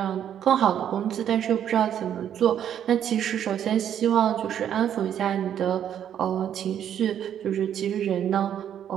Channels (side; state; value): left; quieter; 9.7 dB